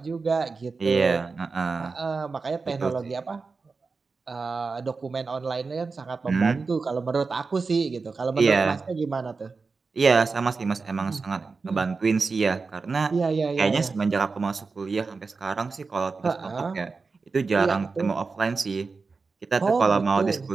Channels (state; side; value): quieter; left; 4.4 dB